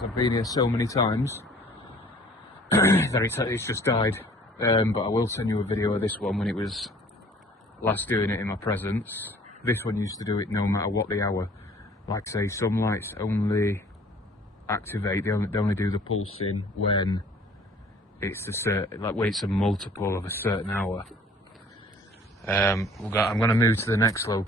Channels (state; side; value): normal; both; correlation 0.53